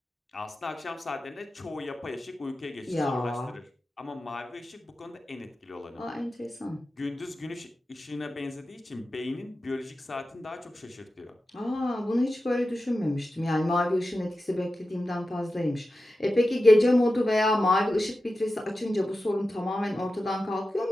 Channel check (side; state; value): both; normal; correlation 0.93